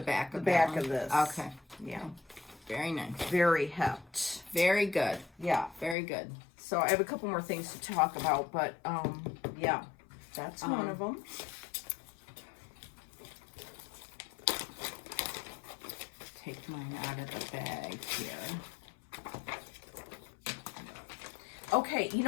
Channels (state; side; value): drops out; right; at 6.0 s